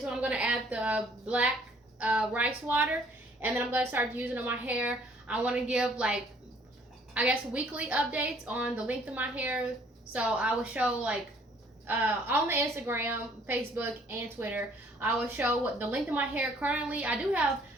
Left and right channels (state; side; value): normal; both; correlation 0.60